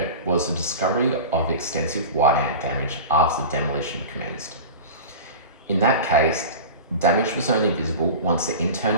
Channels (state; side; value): inverted; both; correlation -0.31